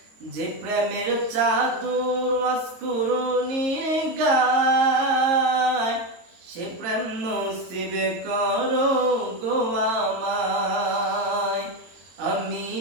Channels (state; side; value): late; left; 22 ms